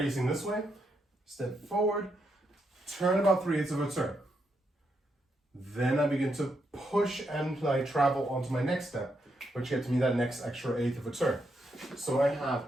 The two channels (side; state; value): both; normal; correlation 0.81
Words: this way, step forward, turn about 3/8 of a turn. Then I begin to push and I travel onto my next step, which gets me that next extra eighth of a turn. So I have